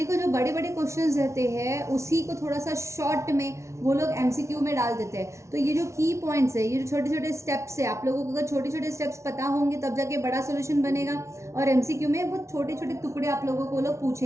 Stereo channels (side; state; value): left; late; 0.14 ms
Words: जो बड़े बड़े क्वेश्चंस रहते हैं उसी को थोड़ा सा शॉर्ट में वो लोग एमसीक्यू में डाल देते हैं। तो ये जो की पॉइंट्स है, ये जो छोटे छोटे स्टेप्स है, आप लोगों को अगर छोटे छोटे स्टेप्स पता होंगे तब जाके बड़ा सोल्यूशन बनेगा। और एमसीक्यू में वो छोटे छोटे टुकड़े आप लोगों को लोग